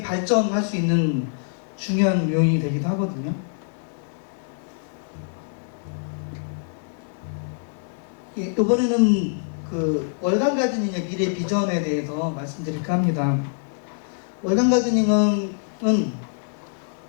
발전할 수 있는 중요한 요인이 되기도 하거든요. 예, 이번에는 그 월간 가드닝의 미래 비전에 대해서 말씀드릴까 합니다. 월간 가드닝은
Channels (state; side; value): silent; right; 62 dB below the other